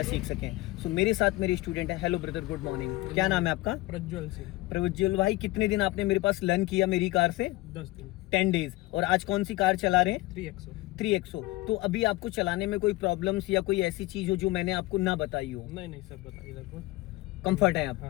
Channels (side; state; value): right; quieter; 20.2 dB